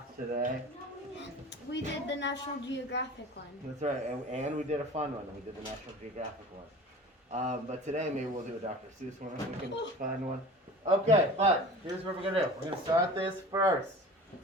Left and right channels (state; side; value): normal; both; correlation 0.39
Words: today. We did the National Geographic one. That's right, and we did a fun one. We did the National Geographic one. But today maybe we'll do a Dr. Seuss one if we can find one. Okay, but here's what we're going to do. We're going to start this first.